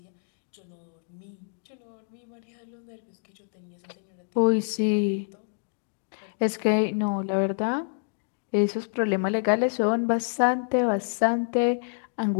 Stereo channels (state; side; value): silent; right; digital silence